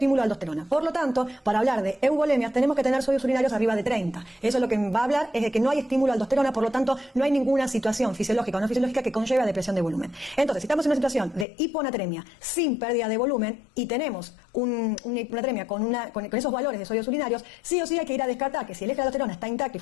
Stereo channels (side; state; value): right; drops out; at 11.5 s